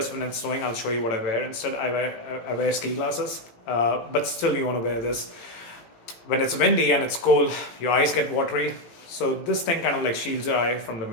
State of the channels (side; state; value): right; late; 18 ms